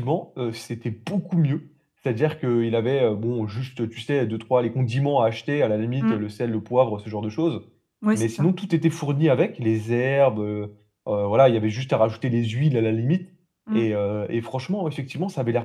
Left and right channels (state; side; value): identical; both; correlation 1.00